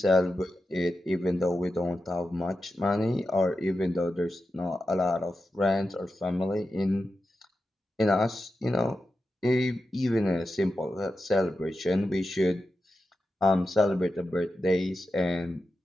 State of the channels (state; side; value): normal; both; correlation 0.90